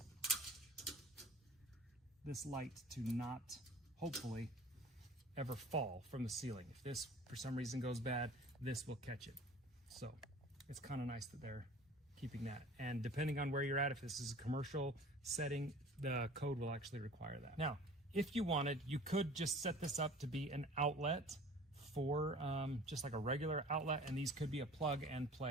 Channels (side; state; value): both; normal; correlation 0.45